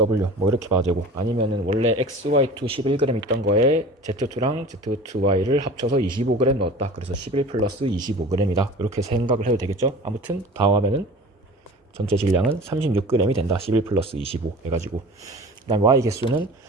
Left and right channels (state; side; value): normal; both; correlation 0.40